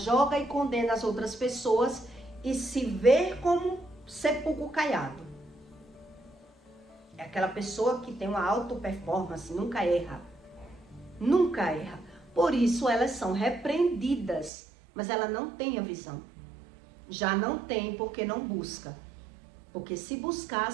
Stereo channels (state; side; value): drops out; left; at 14.5 s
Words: e condena as outras pessoas e se vê como sepulcro caiado. É aquela pessoa que tem uma alta performance, nunca erra. Nunca erra. Por isso elas são repreendidas, mas ela não tem a visão. Já não tem porque não busca. Porque se